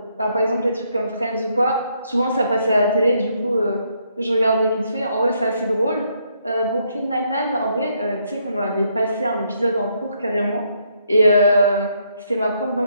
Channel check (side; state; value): both; inverted; correlation -0.74